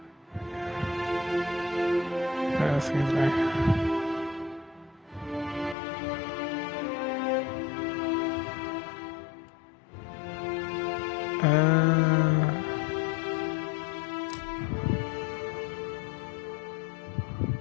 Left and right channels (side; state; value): right; drops out; at 5.8 s